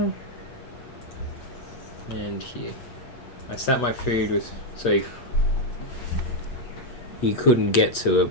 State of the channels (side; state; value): right; late; 8.2 ms